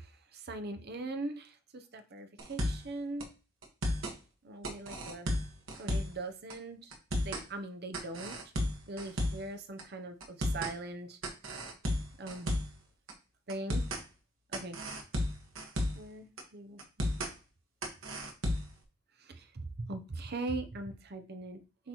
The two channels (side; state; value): both; normal; correlation 0.71